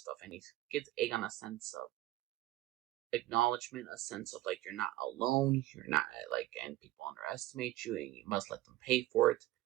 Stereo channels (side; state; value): left; quieter; 16.0 dB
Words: and he gives Aegon a sense of acknowledgement, a sense of like you're not alone, you're not and people underestimate you and you must let them pay for it.